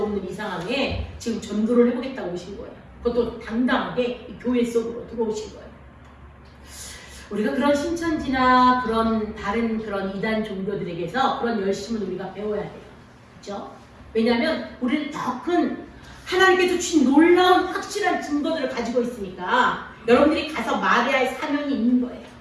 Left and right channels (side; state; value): both; identical; correlation 1.00